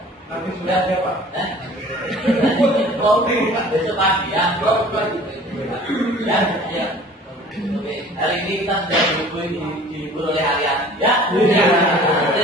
Nanti sudah ada Pak. Kopi besok pagi ya. Ya, ya. Oke, hari ini kita sudah dihibur oleh Ariati ya.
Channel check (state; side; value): normal; both; correlation 0.48